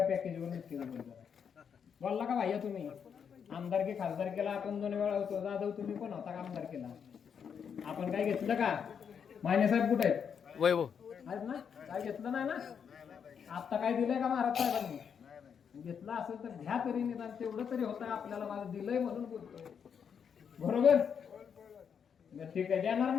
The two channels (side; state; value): right; quieter; 7.2 dB